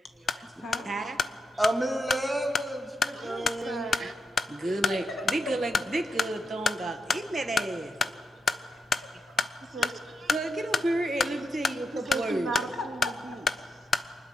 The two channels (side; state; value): both; normal; correlation 0.83